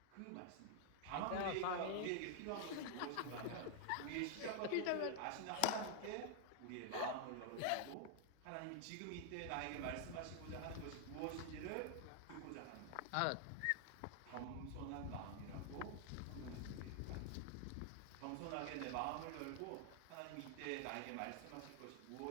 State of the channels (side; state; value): both; different; correlation 0.00